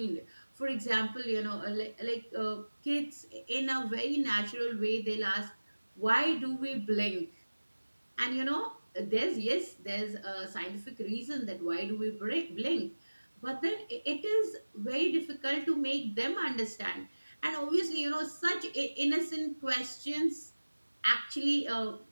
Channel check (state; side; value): inverted; both; correlation -1.00